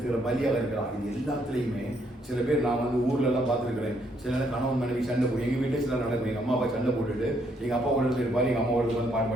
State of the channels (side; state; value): both; normal; correlation 0.71